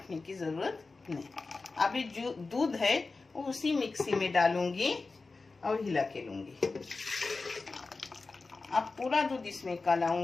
की जरूरत नहीं। अब ये जो दूध है वो उसी मिक्सी में डालूंगी और हिला के लूंगी। अब पूरा दूध इसमें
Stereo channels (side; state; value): right; quieter; 3.9 dB